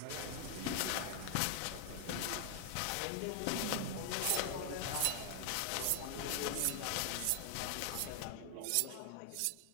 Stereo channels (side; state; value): both; different; correlation 0.00